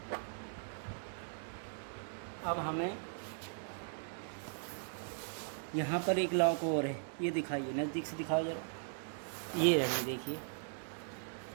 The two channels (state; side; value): silent; left; digital silence